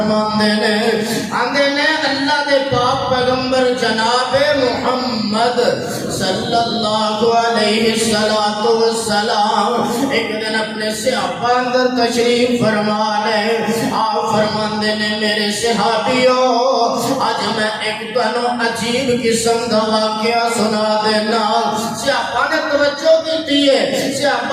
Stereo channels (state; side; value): identical; both; correlation 1.00